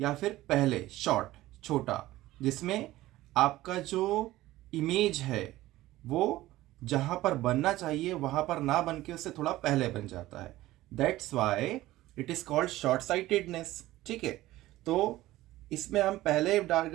फिर पहले शॉर्ट छोटा, जिसमें आपका जो इमेज है वो जहां पर बनना चाहिए वहां पर ना बन के उससे थोड़ा पहले बन जाता है। That's why it is called short sightedness. ठीक है। तो इसमें हम पहले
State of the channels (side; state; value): left; quieter; 16.5 dB